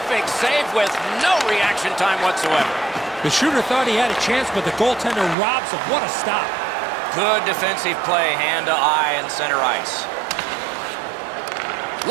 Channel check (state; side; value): drops out; left; at 5.4 s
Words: save with no reaction time whatsoever. The shooter thought he had a chance, but the goaltender robs him. What a stop. Good defensive play, hand to eye and center ice.